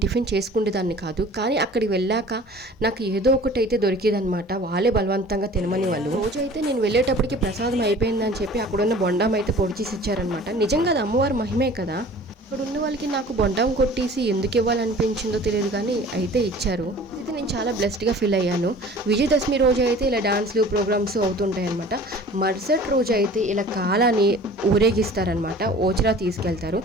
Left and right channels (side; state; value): both; normal; correlation 0.45